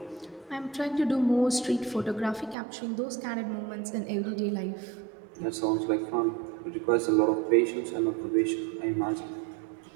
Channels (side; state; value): left; drops out; at 2.6 s